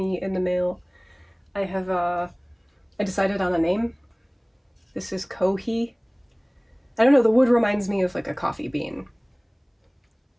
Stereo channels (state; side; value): identical; both; correlation 1.00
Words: in the mail. I decided on a name. This is Kohee. I don't know, the wood reminds me of like a coffee bean.